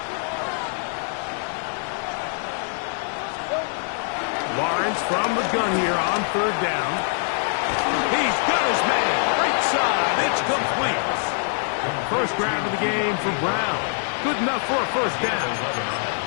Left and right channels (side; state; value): right; silent; 58 dB below the other